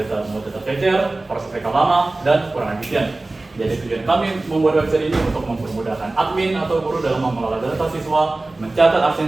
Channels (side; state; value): left; quieter; 3.0 dB